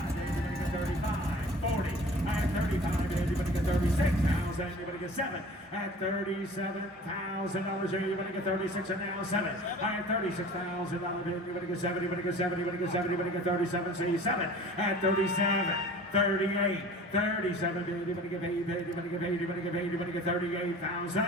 bid. You better get 35, 40. At 35 bid. You better get 36,000. You better get 7. At $37,000 here. You better get 36 and now 7. At $36,000 bid. You better get 7. You better get 7. You better get 7. You better get 37. See 7. At 37. 38, 37, baby, you better give 8, baby, you better give 8, you better give 8, you better get 38,000.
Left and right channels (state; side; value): normal; both; correlation 0.43